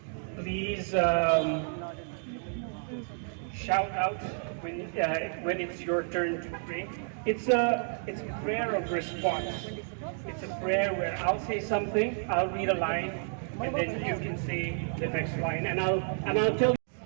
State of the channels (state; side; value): silent; left; 57 dB below the other